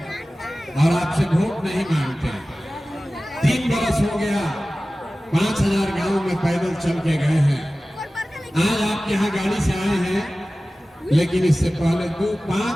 और आपसे वोट नहीं मांगते हैं। 3 बरस हो गया, 5000 गांव में पैदल चल के गए हैं। आज आपके यहाँ गाड़ी से आए हैं, लेकिन इससे पहले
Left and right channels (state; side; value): normal; both; correlation 0.96